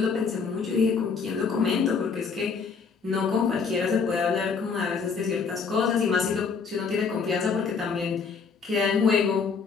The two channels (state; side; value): quieter; right; 5.5 dB